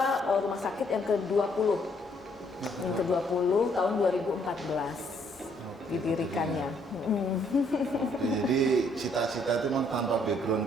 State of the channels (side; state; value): both; normal; correlation 0.67